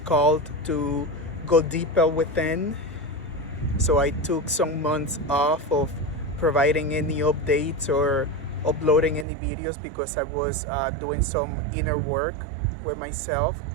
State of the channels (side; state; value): left; drops out; at 9.2 s